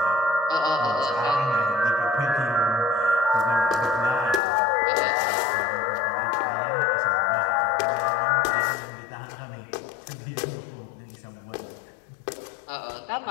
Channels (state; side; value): drops out; right; at 4.4 s